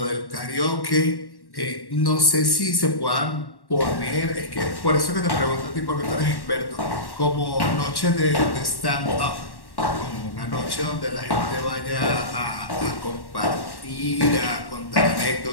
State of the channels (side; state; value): right; late; 1.1 ms